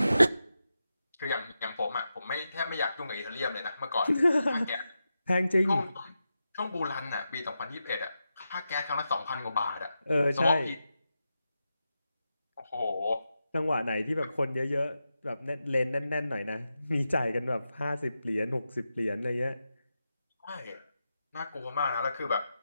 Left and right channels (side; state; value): both; inverted; correlation -0.89